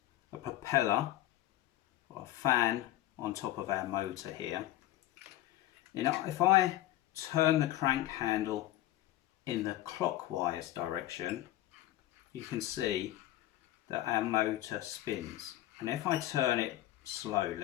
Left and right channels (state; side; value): quieter; right; 14.8 dB